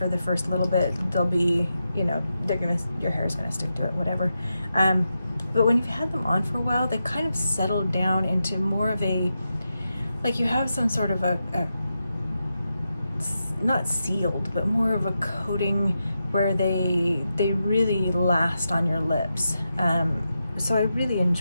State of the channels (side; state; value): both; inverted; correlation -0.88